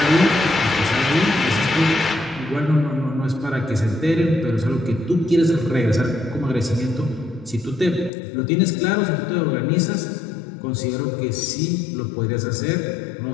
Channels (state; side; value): drops out; right; at 8.1 s